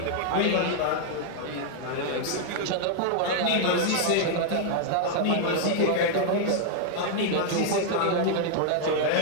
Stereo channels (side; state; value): both; different; correlation 0.00